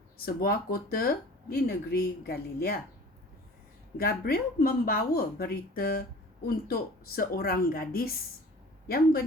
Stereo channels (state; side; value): normal; both; correlation 0.44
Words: sebuah kota di negeri Galilea. Gabriel membawa berita untuk seorang gadis yang